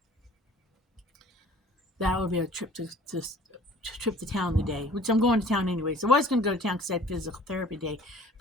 that would be a trip to town today, which I'm going to town anyway. So I was going to go to town because I had physical therapy day,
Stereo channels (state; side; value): normal; both; correlation 0.50